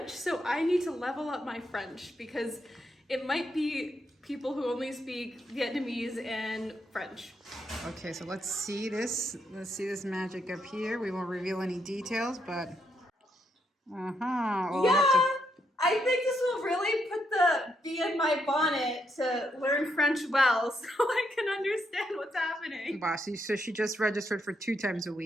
so I need to level up my French because it might be people who only speak Vietnamese and French. Okay, so let's see this. Let's see this magic up here. We won't reveal any details, but We'll have to... I think this will really put the bee in my bonnet to learn French well, so I can understand what's happening. Wow, so she just registered for 2 times a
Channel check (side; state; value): both; normal; correlation 0.78